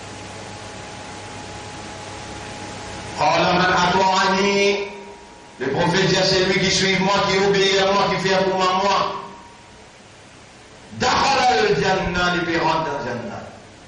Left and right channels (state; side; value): identical; both; correlation 1.00